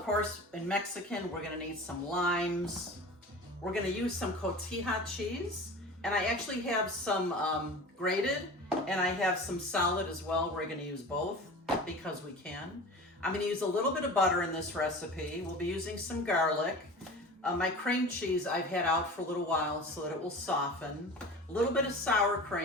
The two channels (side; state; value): both; normal; correlation 0.36